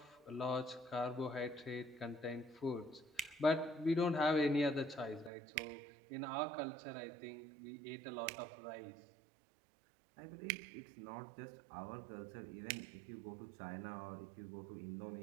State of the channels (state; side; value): drops out; left; at 5.3 s